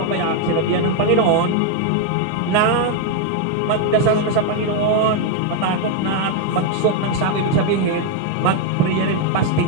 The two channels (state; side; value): different; both; correlation 0.01